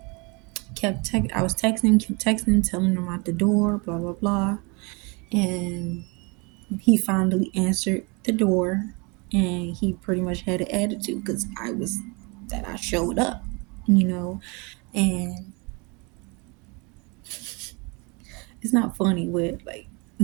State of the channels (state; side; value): quieter; left; 29.9 dB